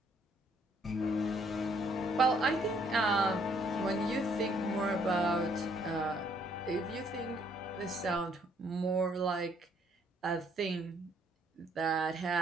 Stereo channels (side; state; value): both; normal; correlation 0.66